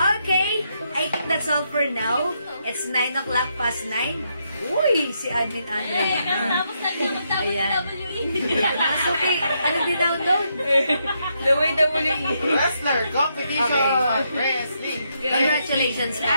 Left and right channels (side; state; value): both; inverted; correlation -0.79